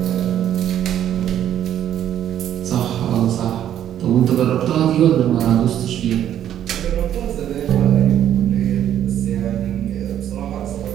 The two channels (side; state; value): left; quieter; 10.7 dB